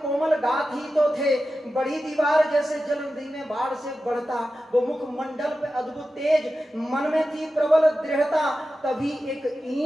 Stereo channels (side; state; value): both; normal; correlation 0.93